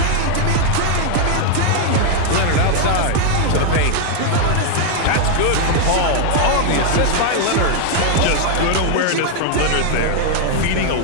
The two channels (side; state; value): both; different; correlation 0.00